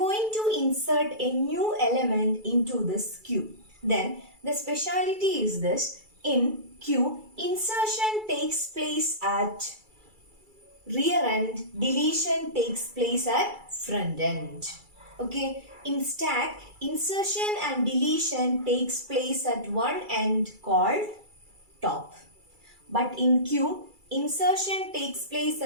to insert a new element into this Q. Then, the speciality is this. In Q, insertion takes place at rear end, deletion takes place at front end. Okay, in stack, insertion and deletion takes place at one end called top. But in Q, insertion takes place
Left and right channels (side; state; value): left; late; 2.3 ms